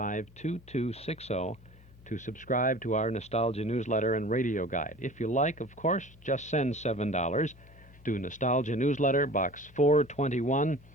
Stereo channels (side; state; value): both; normal; correlation 0.41